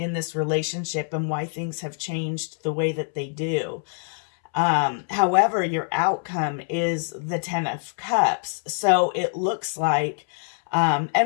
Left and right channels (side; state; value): right; silent; 62 dB below the other